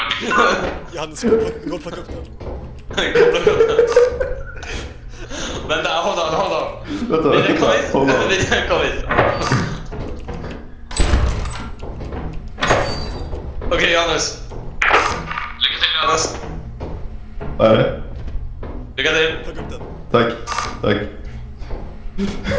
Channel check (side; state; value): both; identical; correlation 1.00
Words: Johannes, gå och plocka upp den. Vänta, hold on. Vänta, Kom hit. Okej, Johannes. Lycka till, Johannes. Vad är det? Lycka till. Plocka upp den. Tack.